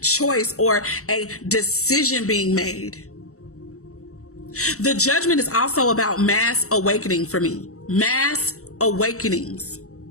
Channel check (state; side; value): late; right; 0.64 ms